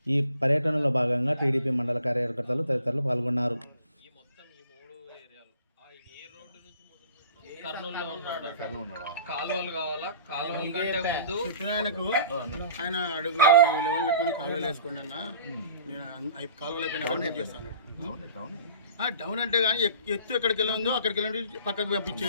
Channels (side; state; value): both; inverted; correlation -0.48